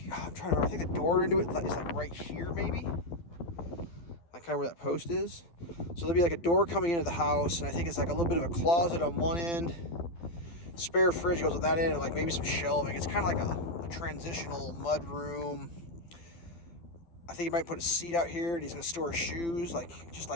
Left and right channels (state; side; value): late; right; 12 ms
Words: remember, I think the door into it is like right here maybe. Like kind of where that post is. So there'll be like a door coming into the house, and I think it's like a little bit of a closet on one end. Spare fridge goes with that end, and like maybe some shelving. It's kind of like a transitional mud room. I think he might put a seat out here, and he's gonna store his shoes. Like, just